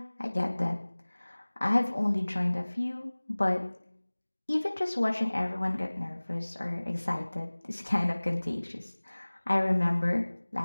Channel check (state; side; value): inverted; both; correlation -1.00